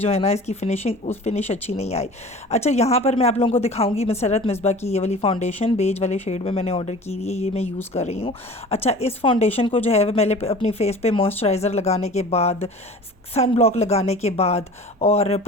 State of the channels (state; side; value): normal; both; correlation 0.41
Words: है ना इसकी फिनिश अच्छी नहीं आई। अच्छा, यहाँ पर मैं आप लोगों को दिखाऊंगी मसरत मिसबा की ये वाली फाउंडेशन बेज वाले शेड में मैंने ऑर्डर की हुई है, ये मैं यूज़ कर रही हूँ। अच्छा, इस फाउंडेशन को जो है मैंने अपनी फेस पे मॉइस्चराइज़र लगाने के बाद, सन ब्लॉक लगाने के बाद, और